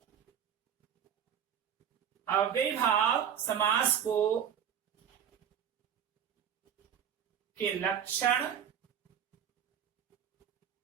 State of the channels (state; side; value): quieter; left; 8.8 dB